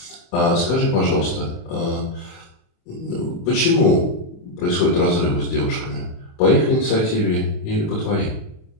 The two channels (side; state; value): right; late; 23 ms